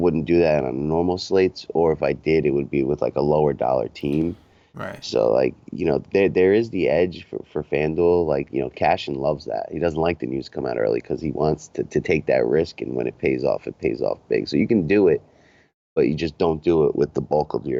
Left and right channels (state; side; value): identical; both; correlation 1.00